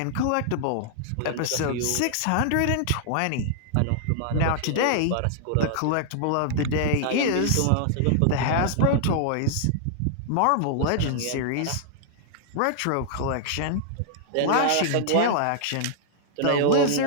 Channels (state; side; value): different; both; correlation -0.01